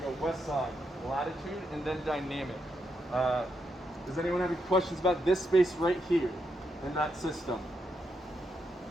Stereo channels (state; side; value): normal; both; correlation 0.82